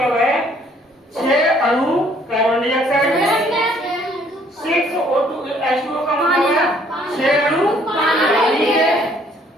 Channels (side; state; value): both; normal; correlation 0.62